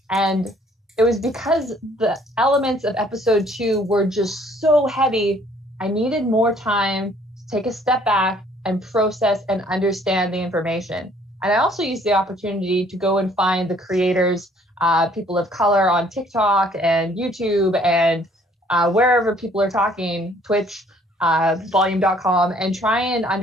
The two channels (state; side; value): normal; both; correlation 0.60